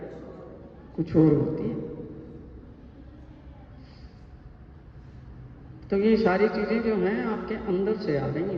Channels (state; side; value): identical; both; correlation 1.00